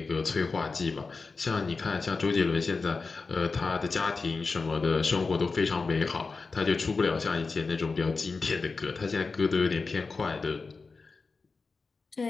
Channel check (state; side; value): quieter; right; 4.2 dB